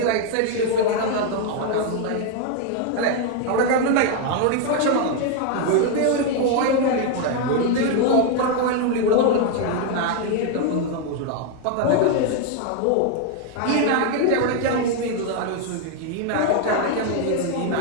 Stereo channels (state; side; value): different; both; correlation 0.01